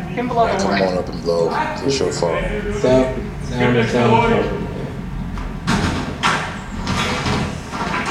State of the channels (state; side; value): identical; both; correlation 1.00